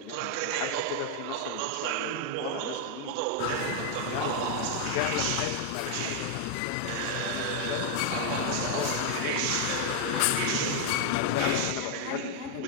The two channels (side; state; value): both; different; correlation 0.00